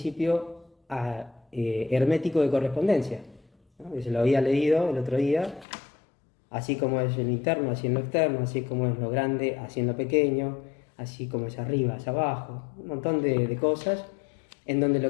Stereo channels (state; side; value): drops out; right; at 5.7 s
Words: hermético de correspondencia, ¿no? Se lo había leído el otro día, así como es en lo interno, así en lo externo, así como es lo grande, así en lo pequeño, así como es arriba, hacia abajo, un montón de cosas, en donde lo